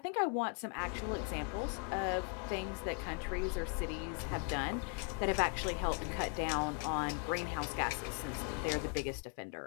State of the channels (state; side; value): quieter; right; 33.8 dB